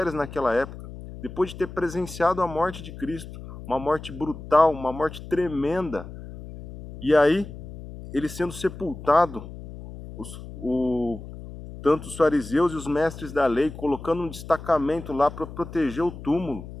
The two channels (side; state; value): left; noise; hum, 13 dB below the sound